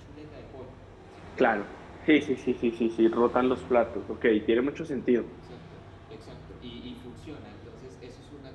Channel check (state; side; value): identical; both; correlation 1.00